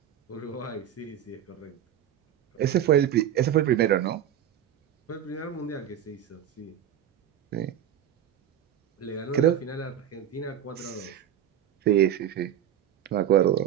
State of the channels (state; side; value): quieter; left; 10.2 dB